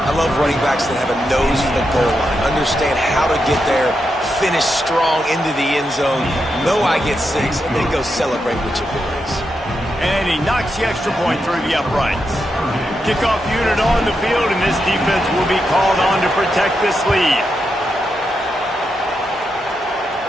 I love running backs that have a nose for the goal line, understand how to get there, finish strong into the end zone, know I get 6, and then go celebrate with your boys. And he knocks the extra point through the uprights. Kickoff unit on the field, and this defense will be called on to protect this lead.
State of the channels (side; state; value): both; normal; correlation 0.85